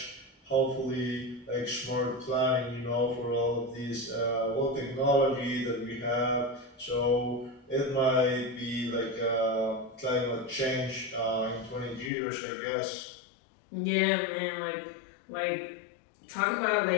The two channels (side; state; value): right; drops out; at 12.1 s